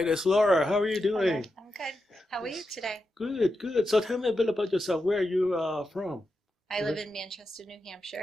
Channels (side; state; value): both; normal; correlation 0.88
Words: is Laura. How are you doing? I'm good. How are you today? Good, good. So tell me a bit about yourself. Where are you from? I live in Manchester, New